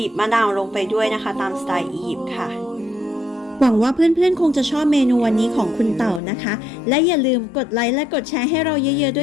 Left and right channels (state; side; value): drops out; right; at 6.2 s